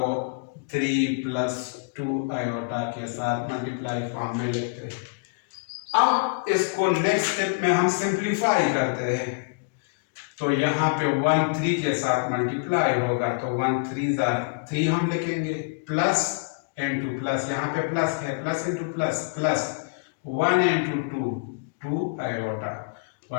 3 प्लस 2 आयोटा के साथ मल्टीप्लाई फॉर्म में लिखते हैं। अब इसको नेक्स्ट स्टेप में हम सिंप्लीफाई करते हैं। तो यहाँ पे 1 3 के साथ मल्टीप्लाई होगा, तो 1 3 3 हम लिखेंगे, प्लस इंटू प्लस, यहाँ पे प्लस है, plus into plus, plus 1 into 2 iota,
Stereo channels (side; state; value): right; quieter; 32.9 dB